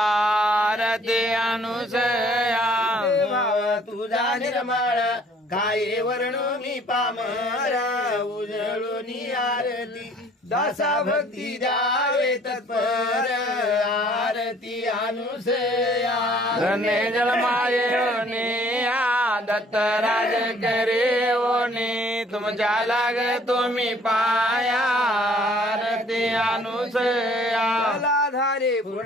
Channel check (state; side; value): normal; both; correlation 0.57